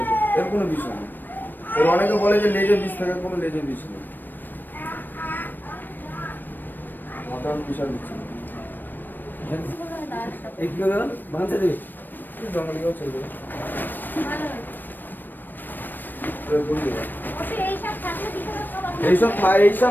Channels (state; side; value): late; right; 0.092 ms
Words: এর কোনো বিষয় নেই। এর অনেকে বলে যে লেজের বিষ থাকে, কোনো লেজের বিষ নেই। মাথার বিশাল বিষ। এই কি করে ভাঙতে দেবে? জঙ্গলে গিয়েও ছেড়ে দেবে।